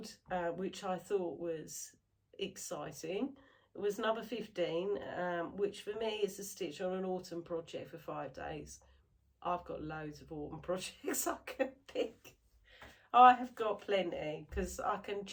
which I thought was exciting, was number 15, which for me is a stitch on an autumn project for 5 days. I've got loads of autumn projects I can pick. I have got plenty, because I can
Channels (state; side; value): identical; both; correlation 1.00